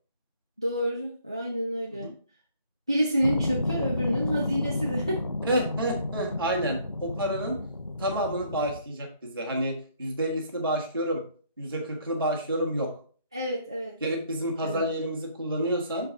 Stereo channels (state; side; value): inverted; both; correlation -0.64